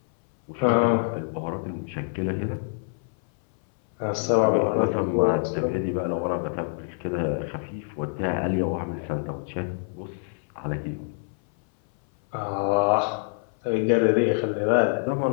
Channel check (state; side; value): silent; right; 60 dB below the other